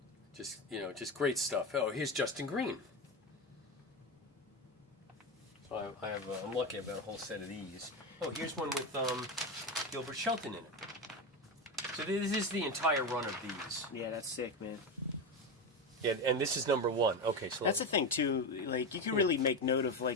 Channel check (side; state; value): both; normal; correlation 0.16